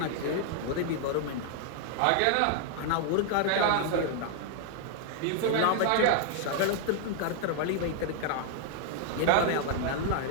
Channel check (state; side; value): different; both; correlation 0.00